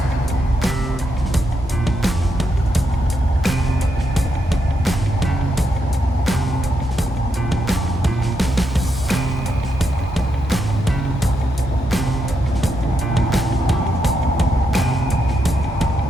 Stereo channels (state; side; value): normal; both; correlation 0.82